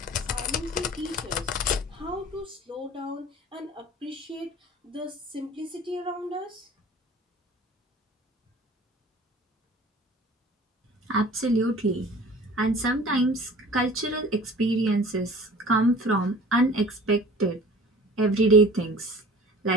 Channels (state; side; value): normal; both; correlation 0.44